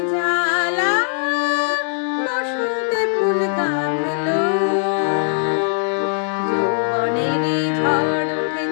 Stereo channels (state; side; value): silent; right; digital silence